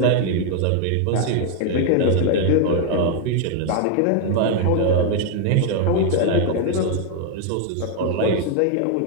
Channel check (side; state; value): both; different; correlation 0.00